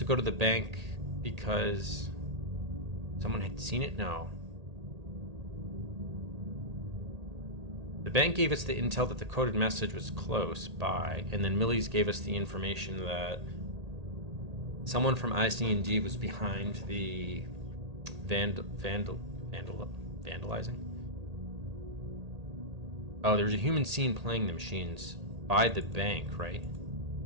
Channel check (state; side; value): late; left; 1.8 ms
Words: go to the bank because someone had seen it? No. The bank gave us the intel that the coded message was close by, and then Millie's gave us the information that someone from IC&D was behind the vandalizing. Oh, there was a human seen playing the machines by the bank, right? I